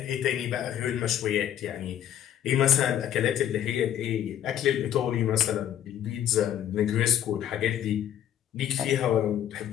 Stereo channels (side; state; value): right; quieter; 10.7 dB